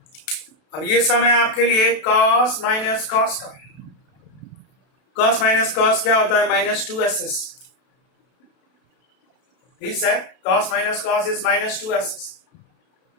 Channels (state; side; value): late; right; 32 ms